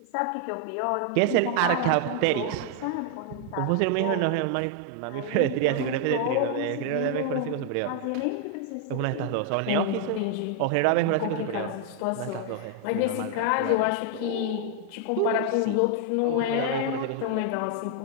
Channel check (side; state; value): both; different; correlation 0.00